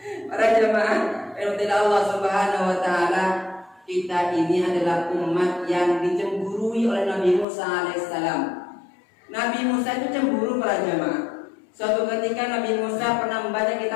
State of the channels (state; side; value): drops out; right; at 7.5 s